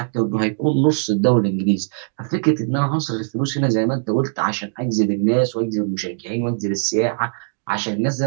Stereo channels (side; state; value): left; silent; digital silence